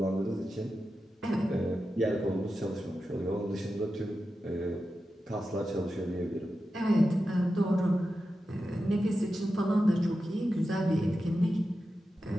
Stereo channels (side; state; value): both; normal; correlation 0.91